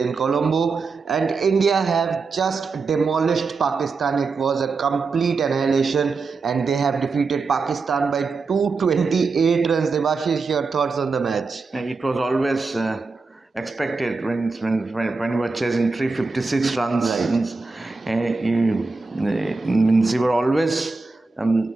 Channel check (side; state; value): left; quieter; 4.2 dB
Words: Colombo. And India have just demolished Pakistan. It was a complete annihilation, and they have defeated Pakistan by 228 runs. Debasis, your thoughts on the match? It was always expected when you were chasing 356 runs. Right. You were always